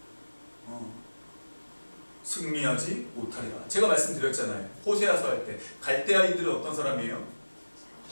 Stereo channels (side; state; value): both; inverted; correlation -1.00